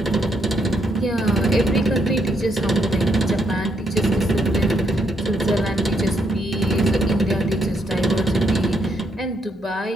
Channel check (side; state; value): both; normal; correlation 0.75